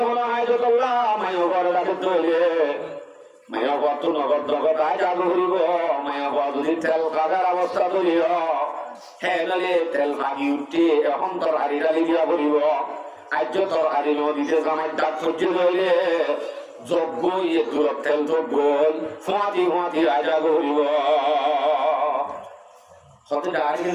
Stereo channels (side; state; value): both; identical; correlation 1.00